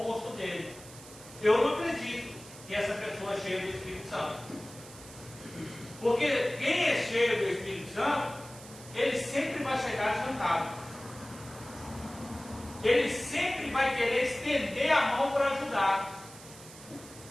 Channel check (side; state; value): right; noise; hiss, 17 dB below the sound